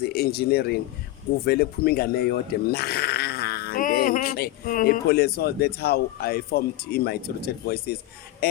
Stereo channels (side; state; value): right; quieter; 16.0 dB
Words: engineering kuvele kuphuma ingane eyodwa mnandi enhle so that's how I formed in my rooted voices